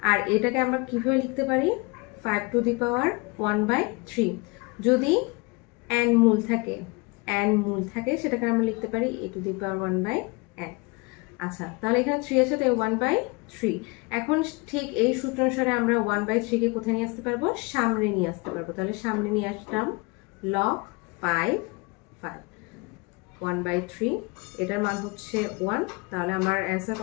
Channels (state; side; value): quieter; right; 27.5 dB